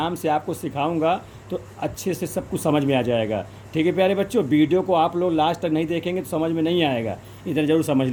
से आपको सिखाऊंगा तो अच्छे से सब कुछ समझ में आ जाएगा। ठीक है प्यारे बच्चों, वीडियो को आप लोग लास्ट तक नहीं देखेंगे तो समझ में नहीं आएगा। इधर ज़रूर समझ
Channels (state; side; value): identical; both; correlation 1.00